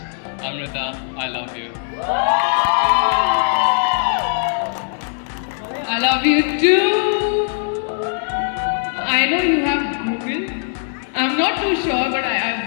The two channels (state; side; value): silent; right; digital silence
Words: Amrita, I love you. I love you too. I know you have Google. I'm not too sure, but